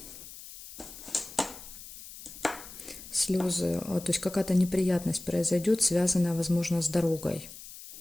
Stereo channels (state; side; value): noise; left; hiss, 15 dB below the sound